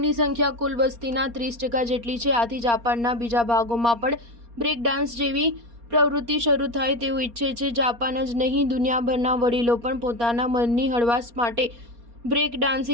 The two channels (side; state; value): left; late; 4.3 ms